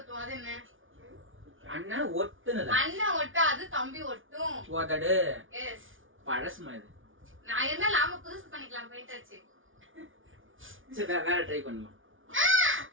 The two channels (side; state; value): left; late; 0.57 ms